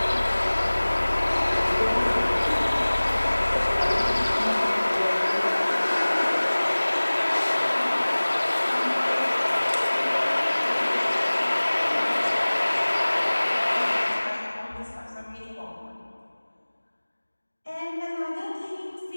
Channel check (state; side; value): inverted; both; correlation -1.00